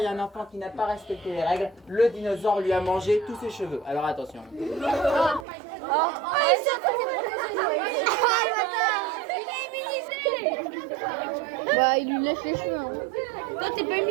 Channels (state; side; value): drops out; left; at 5.5 s